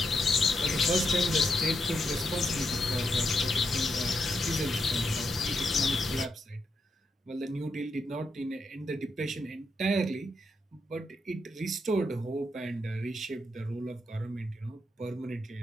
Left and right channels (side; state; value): both; normal; correlation 0.81